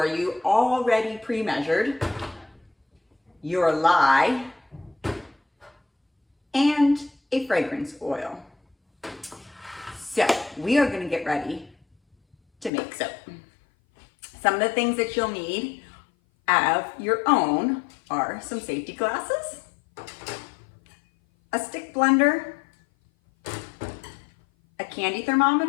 you, already pre-measured, your lye, and a fragrance oil. So we are going to get ready to make soap. Some of the things that you'll need of your own are some safety glasses, a stick blender, a candy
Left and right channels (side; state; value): right; drops out; at 12.7 s